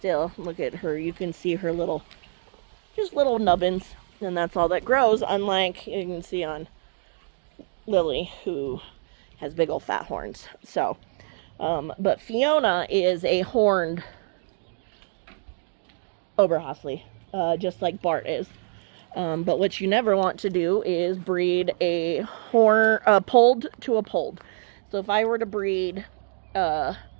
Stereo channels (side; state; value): left; silent; digital silence